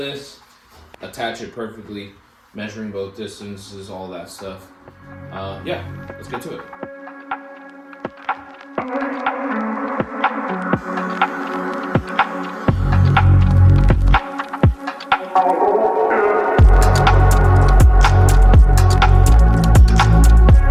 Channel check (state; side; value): identical; both; correlation 1.00